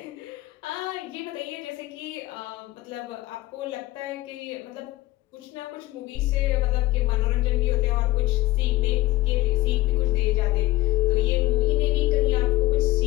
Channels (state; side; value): quieter; right; 17.9 dB